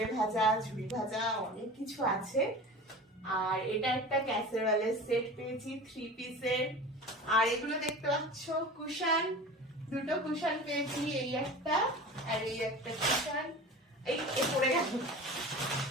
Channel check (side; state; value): both; normal; correlation 0.35